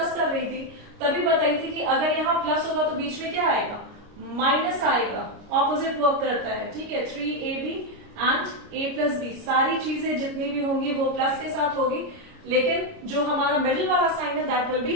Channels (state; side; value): late; left; 29 ms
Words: कर रही थी तभी बताई थी कि अगर यहाँ प्लस होगा तो बीच में क्या आएगा, माइनस आएगा, ऑपोजिट वर्क करता है। ठीक है, 3ab and a plus B, सारी चीजें जितनी भी होंगी वो प्लस के साथ होगी, लेकिन जो हमारा मिडिल वाला साइन है दैट विल बी